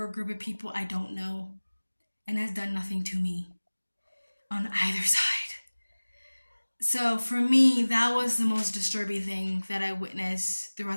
a group of people I don't know and has done nothing to me on either side. So for me, that was the most disturbing thing that I witnessed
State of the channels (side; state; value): both; inverted; correlation -1.00